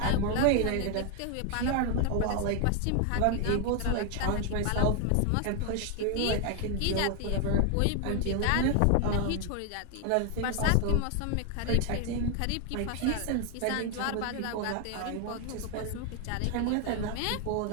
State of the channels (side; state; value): both; different; correlation 0.00